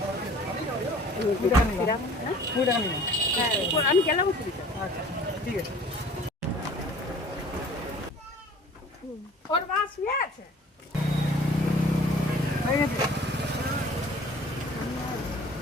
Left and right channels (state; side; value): normal; both; correlation 0.48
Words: আমি গেলাম। আচ্ছা, ঠিক আছে। ওর মা শুয়ে আছে।